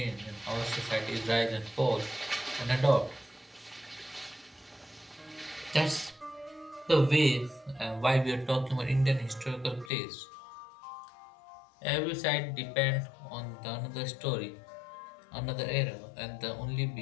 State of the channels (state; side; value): drops out; right; at 9.9 s